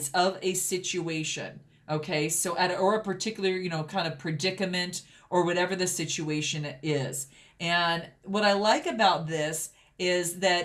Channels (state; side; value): identical; both; correlation 1.00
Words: of a situation. Okay, so or a particular, kind of predicament or whatever the situation is. And what I like about this is